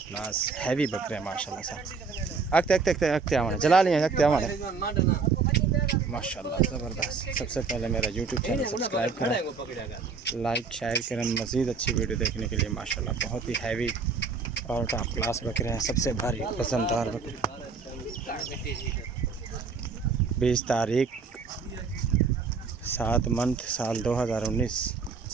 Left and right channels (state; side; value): quieter; left; 5.0 dB